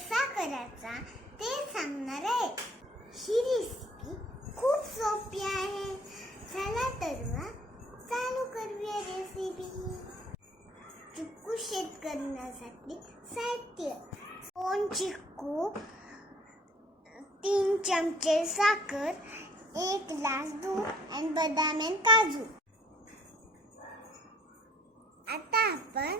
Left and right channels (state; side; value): normal; both; correlation 0.57